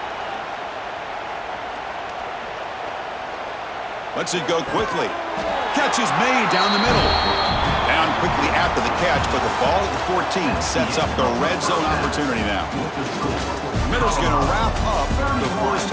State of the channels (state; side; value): identical; both; correlation 1.00